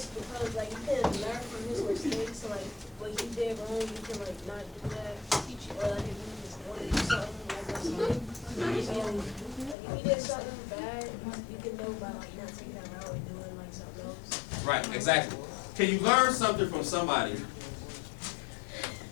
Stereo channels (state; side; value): drops out; right; at 9.8 s